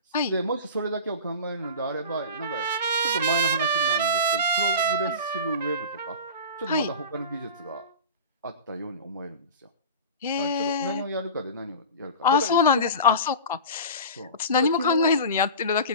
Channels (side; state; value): both; inverted; correlation -0.33